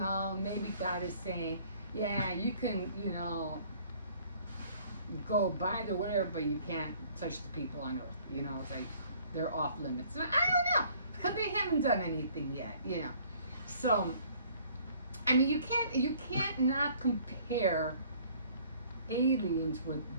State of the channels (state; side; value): inverted; both; correlation -0.57